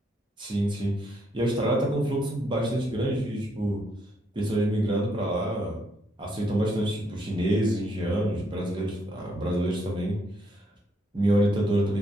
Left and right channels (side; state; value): both; normal; correlation 0.74